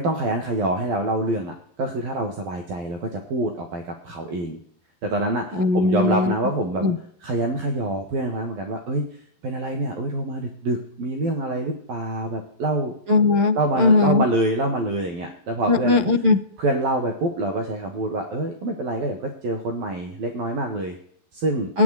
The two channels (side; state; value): left; late; 11 ms